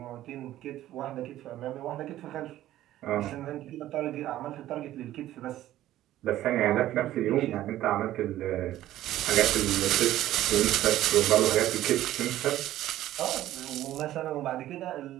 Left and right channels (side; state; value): left; quieter; 13.9 dB